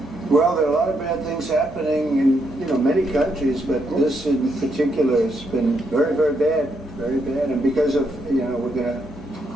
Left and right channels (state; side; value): normal; both; correlation 0.78